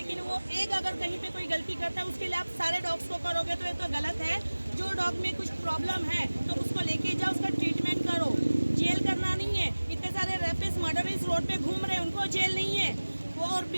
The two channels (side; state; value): both; inverted; correlation -1.00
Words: वो एक अगर कहीं पे कोई गलती करता है उसके लिए आप सारे डॉग्स को करोगे तो ये तो गलत है। जो डॉग में कुछ प्रॉब्लम है तो उसको लेके जाओ, उसका ट्रीटमेंट करो, जेल करना नहीं है। इतने सारे रेपिस्ट मर्डरिस्ट रोड पे घूम रहे हैं, उनको जेल नहीं है। वो और